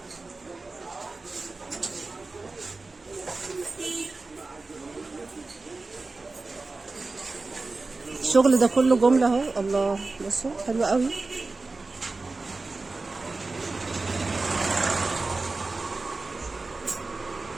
الشغل ده كله جمله اهو. الله بصوا حلو قوي.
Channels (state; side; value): quieter; left; 3.6 dB